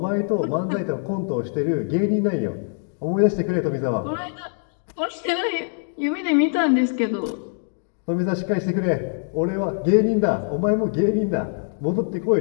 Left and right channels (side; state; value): right; silent; digital silence